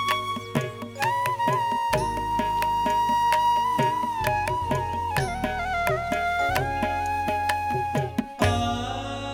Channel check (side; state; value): both; identical; correlation 1.00